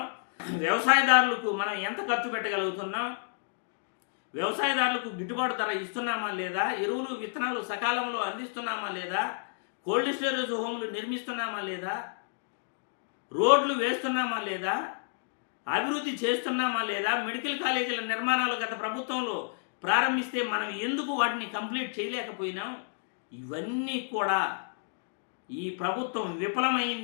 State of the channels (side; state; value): right; silent; digital silence